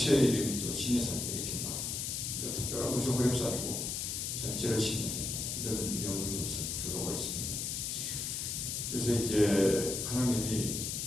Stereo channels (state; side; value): noise; left; hiss, 2 dB below the sound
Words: 이름이 또 신의 산이다 이렇게 말합니다. 그러니까 특별한 것이 호렙산이고 전체를 신의 산이다 이런 연구 결과가 있습니다. 그래서 이제 하나님이